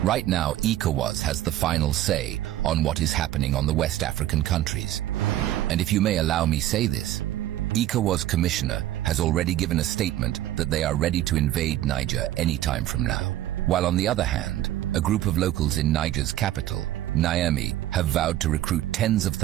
right now ECOWAS has the final say on what is happening on the West African countries. And if you may allow me say this, ECOWAS commissioner has already given a statement that they are ready to invade Niger anytime from now. While on the other hand, a group of locals in Niger's capital, Niamey, have vowed to recruit tens of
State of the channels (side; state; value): left; quieter; 13.6 dB